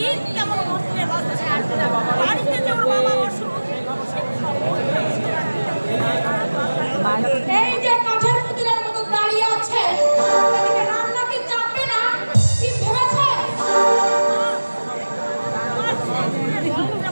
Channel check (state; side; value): inverted; both; correlation -1.00